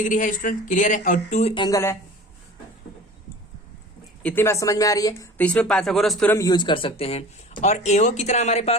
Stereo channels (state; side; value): normal; both; correlation 0.40